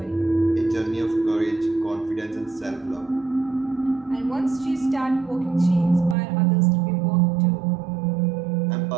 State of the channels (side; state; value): left; drops out; at 6.2 s